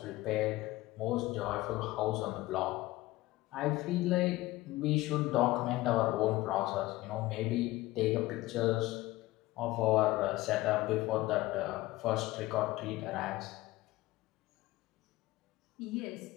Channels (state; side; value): quieter; right; 18.3 dB